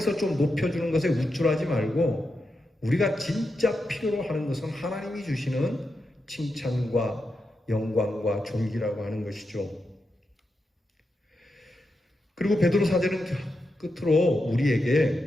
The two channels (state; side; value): normal; both; correlation 0.87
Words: 좀 높여주는 것에 우쭐하지 말고 우리가 진짜 필요로 하는 것은 하나님이 주시는 칭찬과 영광과 존귀라고 하는 것이죠. 그리고 베드로 사도는 끝으로